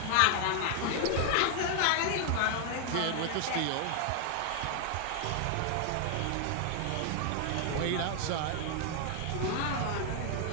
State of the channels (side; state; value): both; different; correlation 0.00